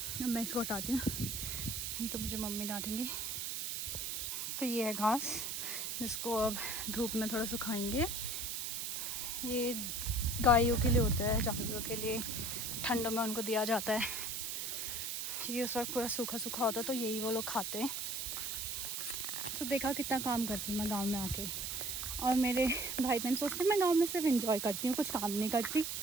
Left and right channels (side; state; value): right; noise; hiss, 3 dB below the sound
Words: अब मैं इसको हटाती हूँ, नहीं तो मुझे मम्मी डांटेंगी। तो ये है घास, जिसको अब धूप में थोड़ा सुखाएंगे। ये गायों के लिए होता है, जानवरों के लिए ठंडों में उनको दिया जाता है, क्योंकि उस वक्त पूरा सूखा सूखा होता है, तो यही वो लोग खाते हैं। तो देखा कितना काम करती हूँ मैं गांव में आके। और मेरे भाई बहन सोचते हैं मैं गांव में सिर्फ एंजॉय करती हूँ, कुछ काम नहीं करती।